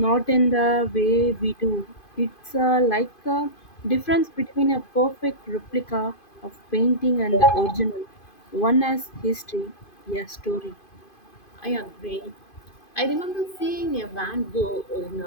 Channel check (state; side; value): late; right; 2.5 ms